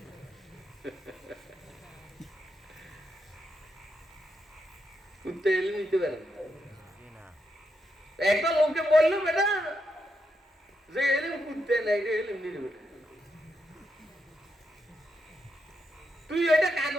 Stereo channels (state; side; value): normal; both; correlation 0.82